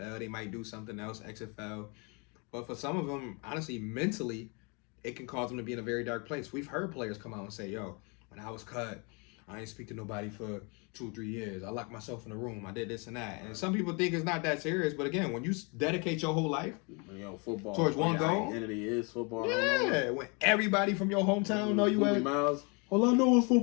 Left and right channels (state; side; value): quieter; right; 32.3 dB